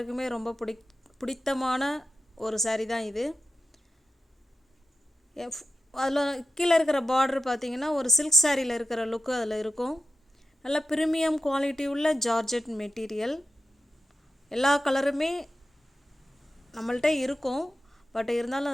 ரொம்ப பிடித்தமான ஒரு saree தான் இது. அதில் கீழே இருக்கிற பார்டர் பார்த்தீங்கன்னா ஒரு சில்க் சாரியில் இருக்கிற லுக்கு அதில் இருக்கும். நல்ல ப்ரீமியம் குவாலிட்டி உள்ள ஜார்ஜெட் மெட்டீரியல். எல்லா கலருமே நம்மள்கிட்ட இருக்கும், பட் இருந்தாலும்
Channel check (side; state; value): both; normal; correlation 0.92